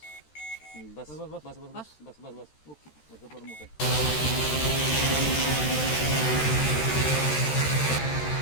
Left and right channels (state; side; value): late; right; 13 ms